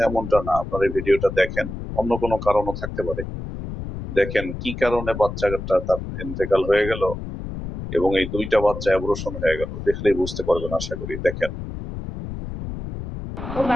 এমনটা না। আপনারা এই ভিডিওটা দেখেন, অন্য কোনো কারণও থাকতে পারে। দেখেন কি কারণে বাচ্চাটা তার ইন্তেকাল হয়ে গেল এবং এই 2টা বাচ্চা অ্যাবর্শন হয়ে গেল, দেখলেই বুঝতে পারবেন আশা করি। দেখেন। ও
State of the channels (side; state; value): left; noise; rumble, 8 dB below the sound